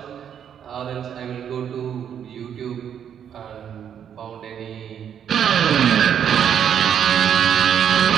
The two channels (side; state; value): left; quieter; 8.7 dB